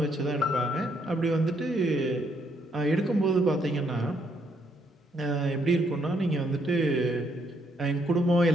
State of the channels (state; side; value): normal; both; correlation 0.72